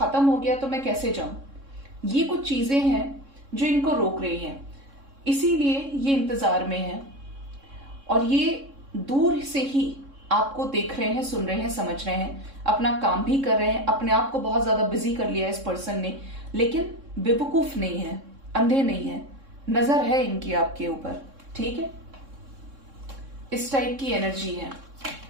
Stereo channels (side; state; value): left; late; 3.6 ms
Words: हो गया तो मैं कैसे जाऊं। ये कुछ चीजें हैं जो इनको रोक रही हैं, इसीलिए ये इंतजार में है और ये दूर से ही आपको देख रहे हैं, सुन रहे हैं, समझ रहे हैं, अपना काम भी कर रहे हैं। अपने आप को बहुत ज्यादा बिजी कर लिया है इस पर्सन ने, लेकिन बेवकूफ नहीं है, अंधे नहीं है, नजर है इनकी आपके ऊपर। ठीक है, इस टाइप की एनर्जी है।